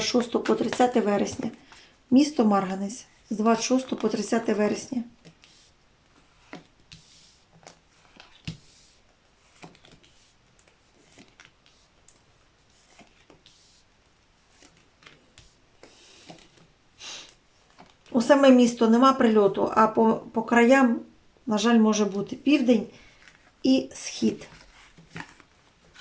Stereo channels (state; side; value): identical; both; correlation 1.00